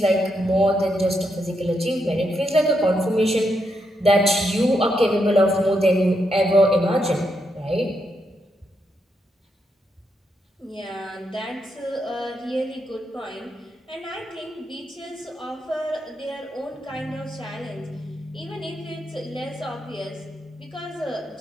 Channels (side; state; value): both; normal; correlation 0.81